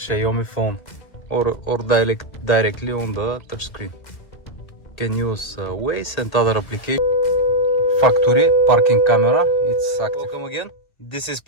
phone or directly on the touchscreen. Can use Waze and other applications. Factory parking camera, it's active. Welcome again. This is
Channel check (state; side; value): late; right; 2.1 ms